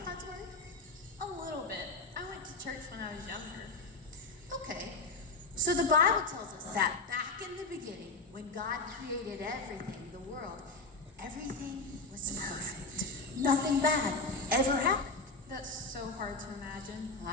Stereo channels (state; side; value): quieter; right; 3.3 dB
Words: God's Word? A little bit. I went to church when I was younger. Okay. So the Bible tells us that back in the beginning, when God created everything, the world, everything was perfect. Nothing bad ever happened. That's so hard to imagine.